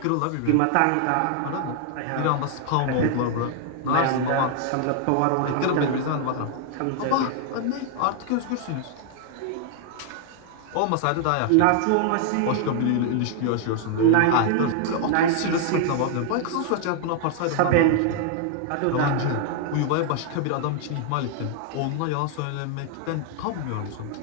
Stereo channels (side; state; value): both; different; correlation 0.00